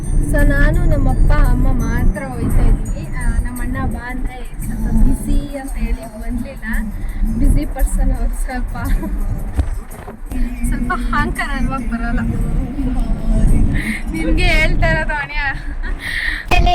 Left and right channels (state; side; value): identical; both; correlation 1.00